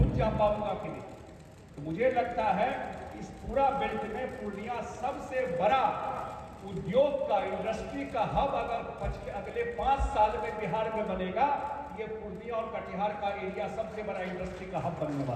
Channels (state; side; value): identical; both; correlation 1.00